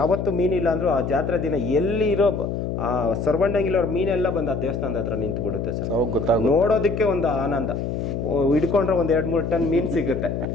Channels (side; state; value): left; noise; hum, 3 dB below the sound